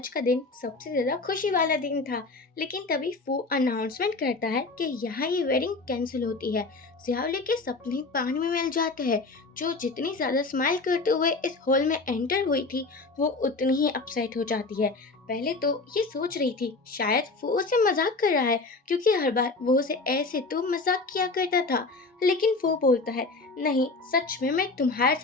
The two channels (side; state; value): right; quieter; 3.7 dB